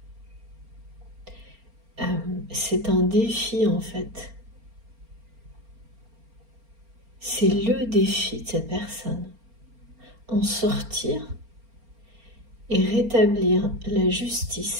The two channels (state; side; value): late; left; 4.3 ms